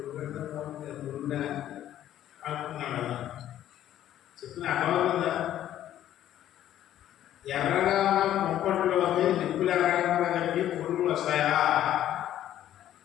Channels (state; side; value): quieter; right; 12.0 dB